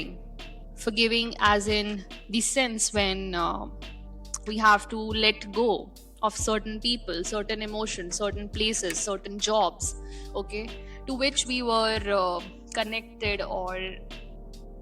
as in the sense when we have to let go of certain people, certain emotions, certain places, certain jobs, okay, to which we were connected or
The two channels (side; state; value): both; identical; correlation 1.00